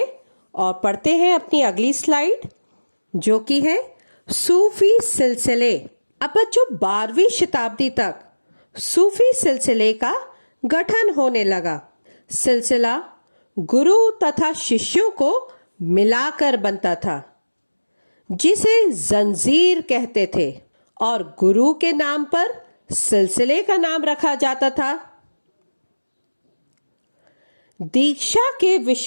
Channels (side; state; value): both; inverted; correlation -1.00